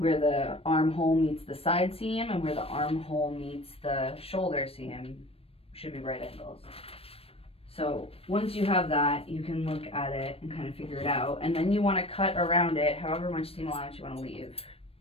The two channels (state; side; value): late; right; 0.28 ms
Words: the armhole meets the side seam and where the armhole meets the shoulder seam should be right angles. So once you have that, you can look at it and kind of figure it out. And then you want to cut around it however much seam allowance you want to leave.